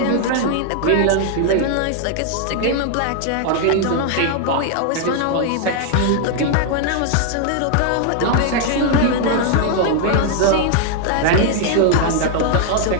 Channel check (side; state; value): both; different; correlation 0.00